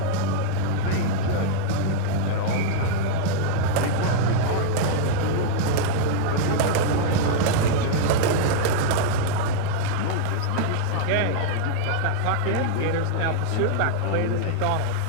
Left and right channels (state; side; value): different; both; correlation -0.01